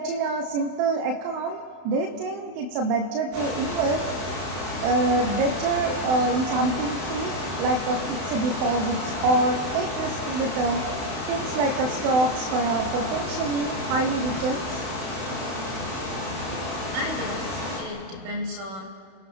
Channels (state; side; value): late; left; 31 ms